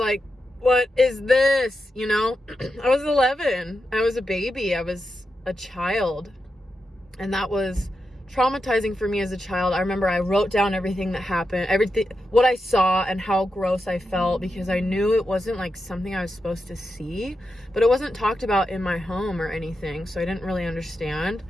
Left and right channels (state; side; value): normal; both; correlation 0.88